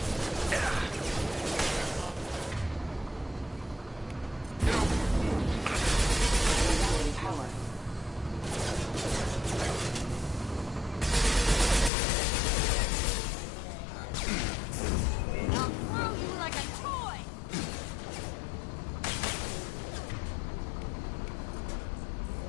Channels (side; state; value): right; drops out; at 11.9 s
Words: I'll throw you like a toy!